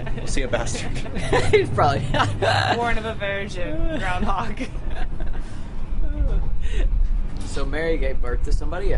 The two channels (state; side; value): identical; both; correlation 1.00